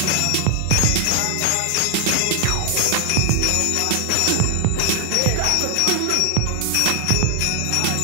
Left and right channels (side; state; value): both; different; correlation 0.00